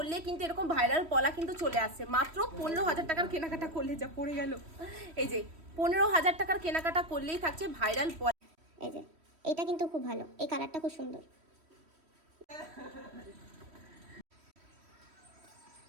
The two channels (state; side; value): late; left; 3.1 ms